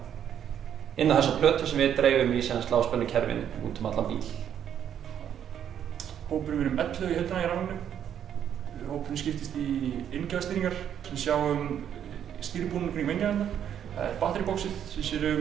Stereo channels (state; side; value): quieter; left; 9.4 dB